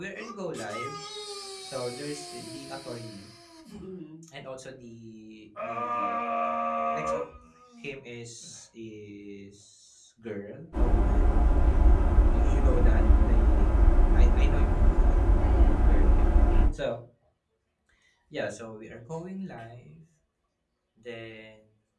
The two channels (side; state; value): both; identical; correlation 1.00